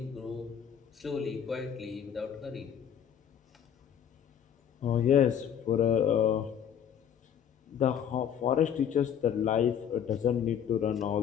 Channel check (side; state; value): right; quieter; 8.7 dB